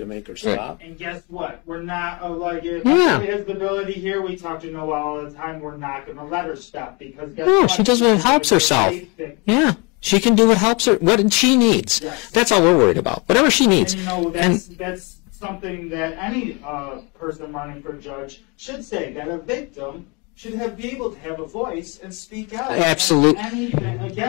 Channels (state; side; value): quieter; right; 29.7 dB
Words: make her stop? And guess what? We're not if somebody has the ability here. We talk to Noelle all the time. We're not going to let her stop because guess what? She does what helps herself. Yeah. She can do what helps her, what she needs. Yes. That's all we're worried about. Whatever she needs. And that's something that any person running for judge should say, that a victim should be able to have a voice and speak out. Absolutely.